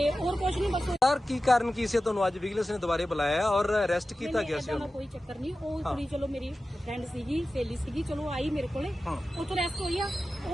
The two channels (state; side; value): normal; both; correlation 0.94